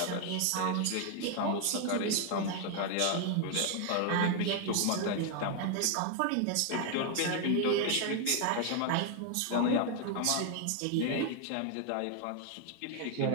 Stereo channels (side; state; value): both; different; correlation 0.01